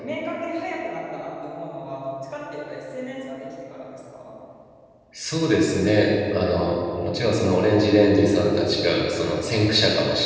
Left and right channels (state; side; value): identical; both; correlation 1.00